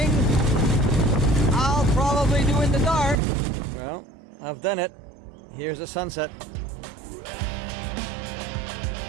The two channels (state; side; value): drops out; left; at 3.2 s